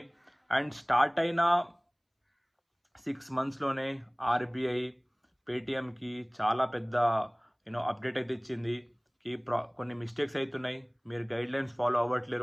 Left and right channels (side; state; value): both; identical; correlation 1.00